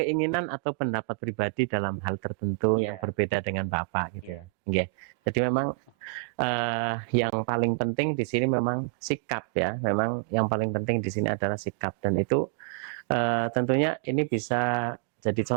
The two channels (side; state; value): left; quieter; 35.5 dB